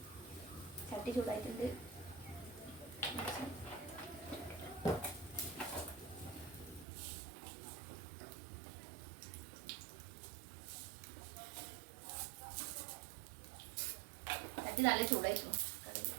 ചട്ടി ചൂടായിട്ടുണ്ട്. ചട്ടി നല്ല ചൂടായിരുന്നു.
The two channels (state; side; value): drops out; left; at 6.9 s